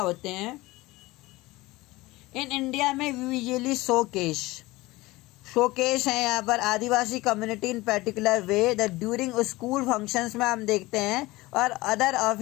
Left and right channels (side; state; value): right; quieter; 20.2 dB